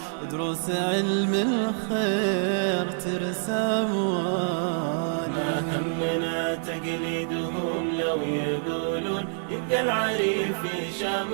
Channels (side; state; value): left; silent; 60 dB below the other